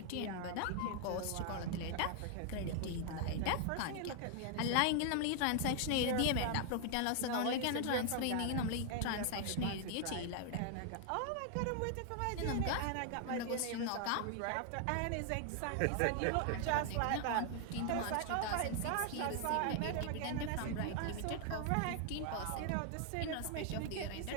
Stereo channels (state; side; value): different; both; correlation 0.00